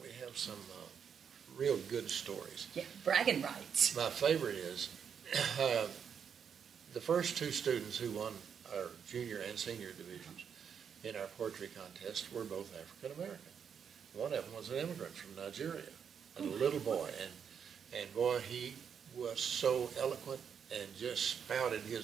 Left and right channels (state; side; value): quieter; left; 7.4 dB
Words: real good stories. Yeah, bragging rights. My favorite is the first 2 students who won our junior and senior divisions in our poetry contest were both African American. One of them was an immigrant from Nigeria, a little boy, and boy, he was so eloquent and just spouted